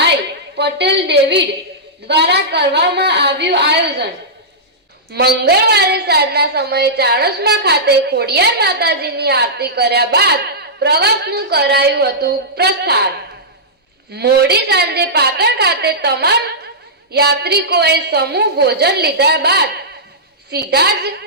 પટેલ ડેવિડ દ્વારા કરવામાં આવ્યું આયોજન। મંગળવારે સાંજના સમયે ચાણસમા ખાતે ખોડિયાર માતાજીની આરતી કર્યા બાદ પ્રવાસનું કરાયું હતું પ્રસ્થાન। મોડી સાંજે પાટણ ખાતે તમામ યાત્રિકોએ સમૂહ ભોજન લીધા બાદ સીધા જ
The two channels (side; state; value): both; normal; correlation -0.13